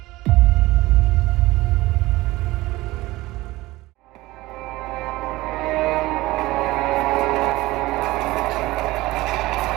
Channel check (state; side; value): quieter; left; 18.9 dB